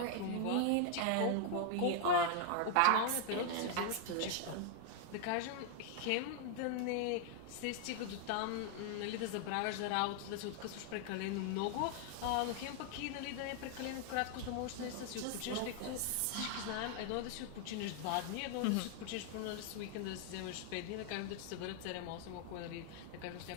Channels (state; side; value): different; both; correlation 0.00